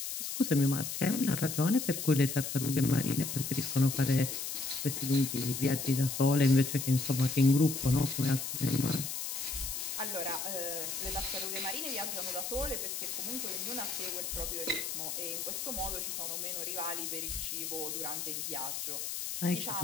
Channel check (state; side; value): noise; left; hiss, 4 dB below the sound